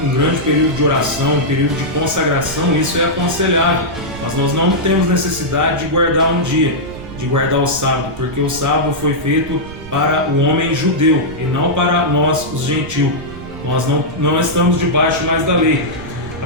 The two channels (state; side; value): noise; right; rumble, 14 dB below the sound